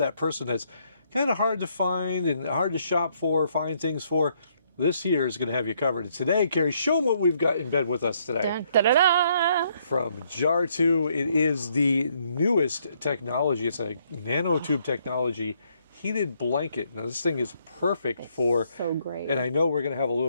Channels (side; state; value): both; inverted; correlation -0.71